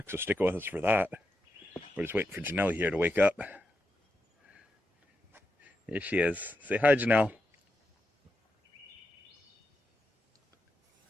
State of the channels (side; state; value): both; normal; correlation 0.86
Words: so stick with us for that. We're just waiting for Janelle here to wake up. Here she is. Say hi, Janelle.